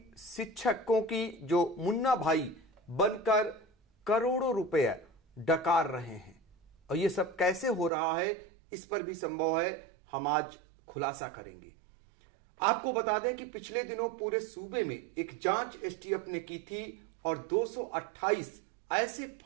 शिक्षकों की जो मुन्ना भाई बनकर करोड़ों रुपए डकार रहे हैं और ये सब कैसे हो रहा है, इस पर भी संभव है हम आज खुलासा करेंगे। आपको बता दें कि पिछले दिनों पूरे सूबे में एक जांच एसटीएफ ने की थी और 228 ऐसे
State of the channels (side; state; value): left; drops out; at 7.9 s